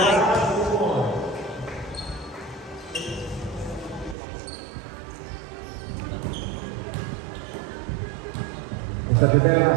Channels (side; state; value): left; drops out; at 4.2 s